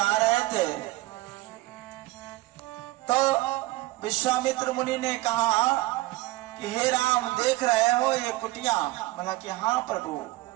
रहे थे तो विश्वामित्र मुनि ने कहा कि हे राम देख रहे हो ये कुटिया? बोला कि हाँ प्रभु,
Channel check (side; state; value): left; quieter; 19.2 dB